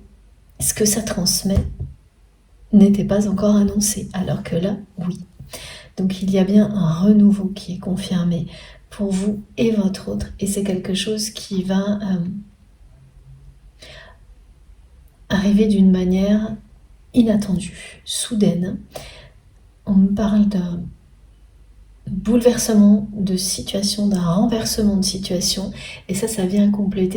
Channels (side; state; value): both; identical; correlation 1.00